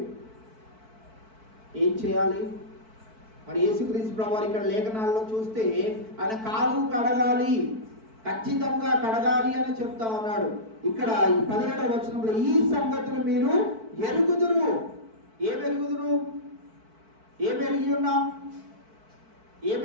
ఏం చేయాలి? మరి యేసుక్రీస్తు ప్రభువారు ఇక్కడ లేఖనాల్లో చూస్తే ఆయన కాలు కడగాలి, ఖచ్చితంగా కడగాలి అని చెప్తా ఉన్నాడు. ఇక్కడ ఈ 17వ వచనంలో ఈ సంగతులు మీరు ఎరుగుదురు. ఏం ఎరుగుదురు? ఏం ఎరిగి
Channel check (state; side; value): late; left; 4.5 ms